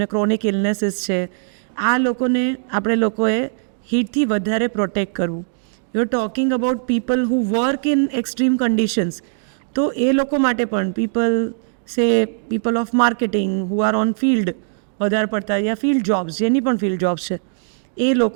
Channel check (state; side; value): silent; left; digital silence